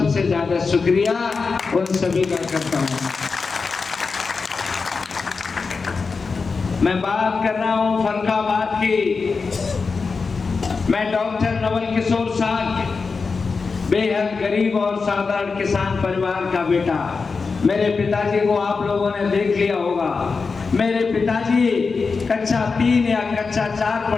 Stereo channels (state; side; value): quieter; right; 4.7 dB